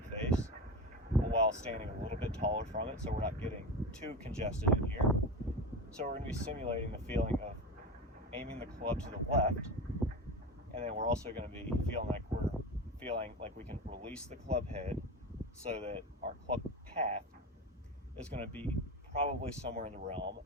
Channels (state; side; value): normal; both; correlation 0.24